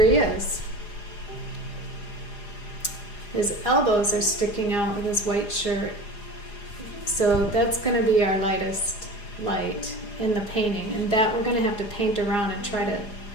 he is. His elbows are sticking out with his white shirt. So that's going to be our lightest light in the painting, and that we're going to have to paint around and try to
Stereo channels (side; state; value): right; late; 4.9 ms